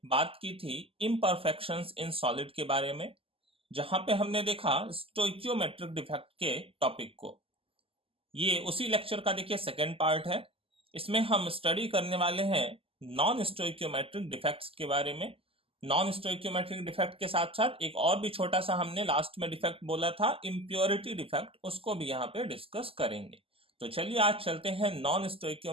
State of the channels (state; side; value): late; left; 0.27 ms